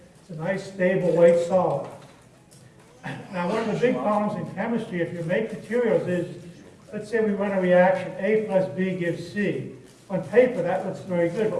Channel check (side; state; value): both; identical; correlation 1.00